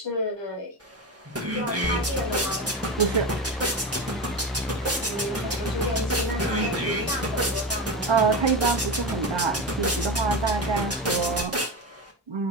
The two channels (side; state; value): both; normal; correlation 0.21